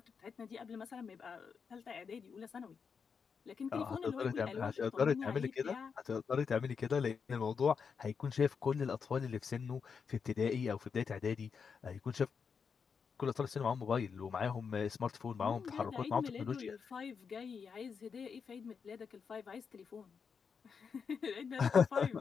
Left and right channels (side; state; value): right; quieter; 6.0 dB